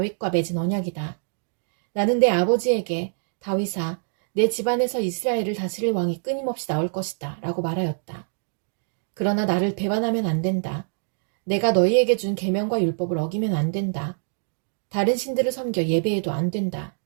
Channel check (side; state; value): left; silent; digital silence